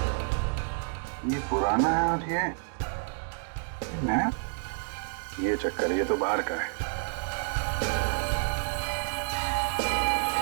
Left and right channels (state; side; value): silent; left; 57 dB below the other